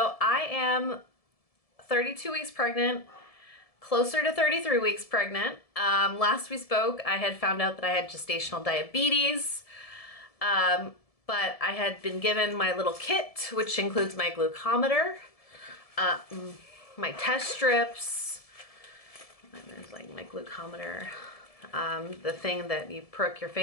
I am 32 weeks pregnant, closer to 33 weeks pregnant. Last we spoke, I had found out that I had gestational diabetes, but I had been given my little kit, which includes my glucometer, my test strips, and there's like my glucometer, the thing that you prick your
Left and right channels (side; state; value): right; late; 1.7 ms